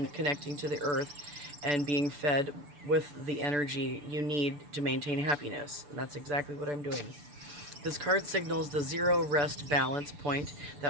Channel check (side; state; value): left; late; 6.9 ms